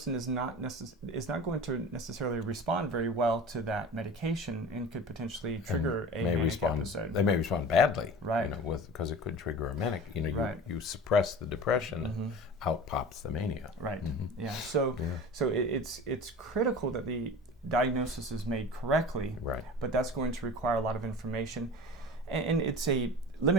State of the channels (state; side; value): normal; both; correlation 0.36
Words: is not going to necessarily respond very well to that medication and could potentially trigger a manic episode. They may respond badly, because it could trigger a manic. You suppress the depression, out pops the mania. Right. Yeah. So it's critical that the diagnosis is made correctly. Right. But that's going to require a lot of information, and it's a